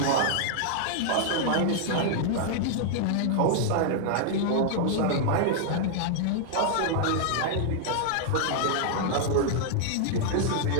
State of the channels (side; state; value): both; different; correlation -0.01